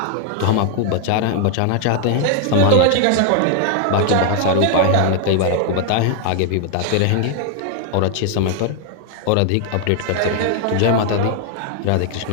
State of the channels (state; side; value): different; both; correlation 0.00